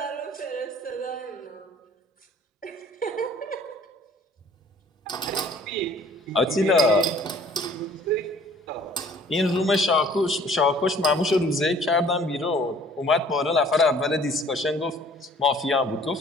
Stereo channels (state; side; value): normal; both; correlation 0.54